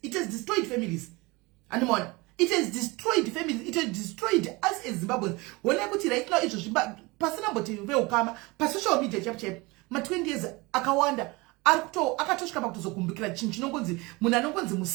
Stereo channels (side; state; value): left; quieter; 24.3 dB